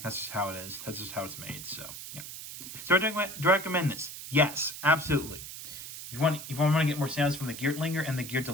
that's just how it is. That's just how it's made, so yeah. So do I recommend this? Yes, absolutely. If you want to get more sounds from the Geertlinger and the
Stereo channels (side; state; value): right; noise; hiss, 10 dB below the sound